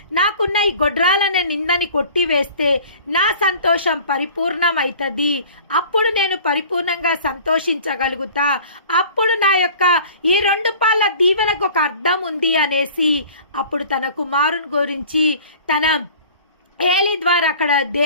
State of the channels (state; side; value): inverted; both; correlation -0.45